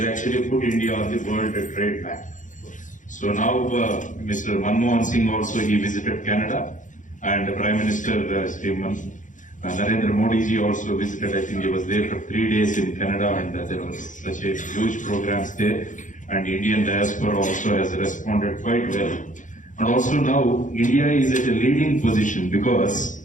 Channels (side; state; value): right; late; 0.37 ms